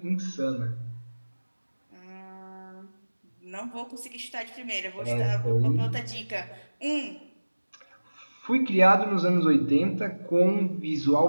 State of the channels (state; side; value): inverted; both; correlation -1.00